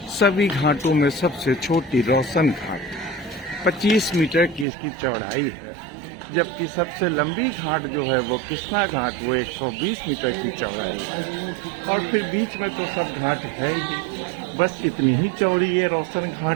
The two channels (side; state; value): left; drops out; at 4.7 s